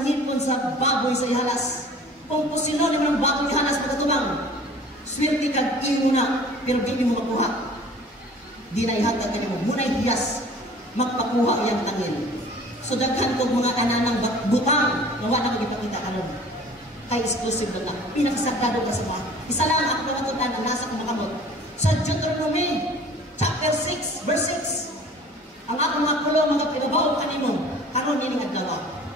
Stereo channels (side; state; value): both; normal; correlation 0.47